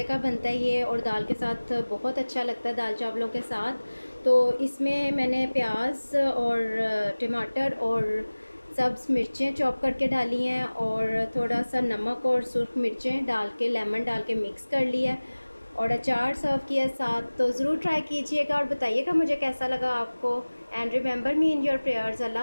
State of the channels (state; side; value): inverted; both; correlation -1.00